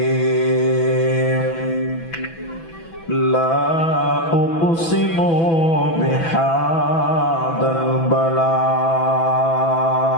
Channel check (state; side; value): late; right; 6.0 ms